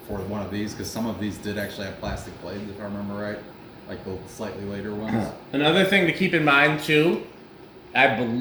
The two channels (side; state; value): both; identical; correlation 1.00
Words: for one of these, because some of these did actually have plastic blades, if I remember right, like the slightly later ones. Another thing to keep in mind too, I